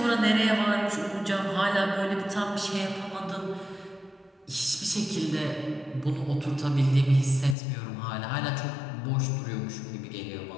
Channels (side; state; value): right; drops out; at 7.6 s